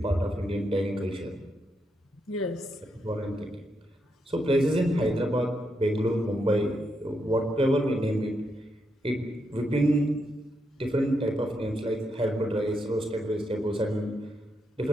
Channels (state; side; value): normal; both; correlation 0.81